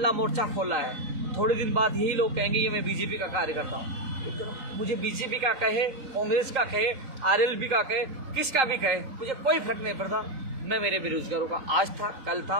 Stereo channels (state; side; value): late; left; 3.8 ms